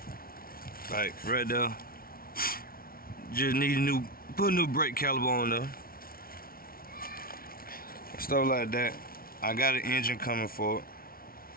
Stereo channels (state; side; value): late; right; 0.43 ms